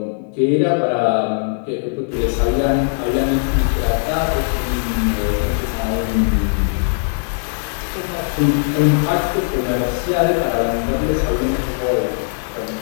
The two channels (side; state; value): right; silent; digital silence